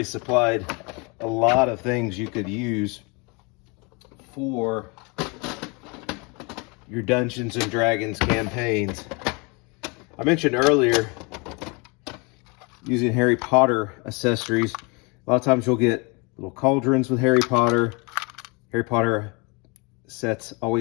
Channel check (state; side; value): quieter; right; 30.0 dB